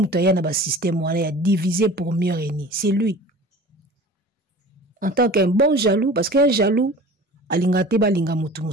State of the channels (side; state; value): both; normal; correlation 0.41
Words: na ba système wana ya diviser pour mieux régner. C'est lui. En tant qu'un bon jaloux, parce qu'un jaloux, alingate balinga mutu